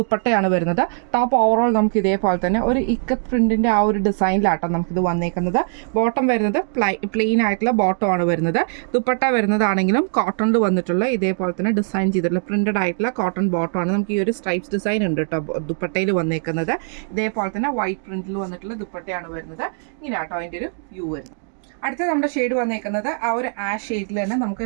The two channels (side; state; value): left; silent; 56 dB below the other